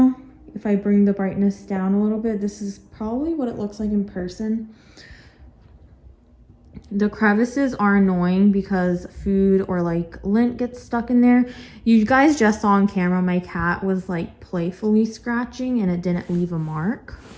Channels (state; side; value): identical; both; correlation 1.00